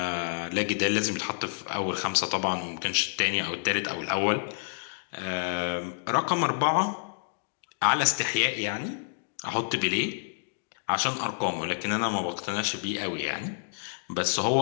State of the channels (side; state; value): right; silent; digital silence